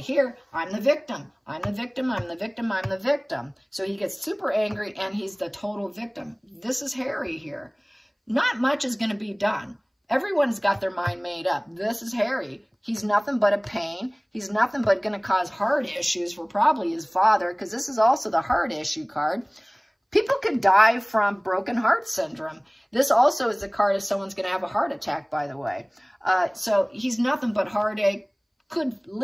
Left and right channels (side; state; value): both; identical; correlation 1.00